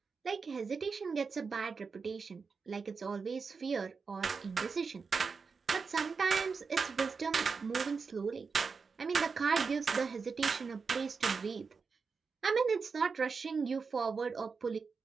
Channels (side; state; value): left; quieter; 5.0 dB